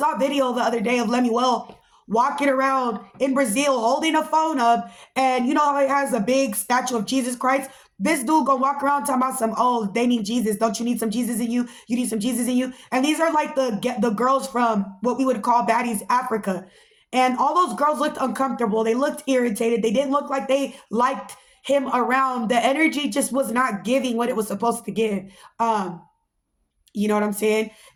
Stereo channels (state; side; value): identical; both; correlation 1.00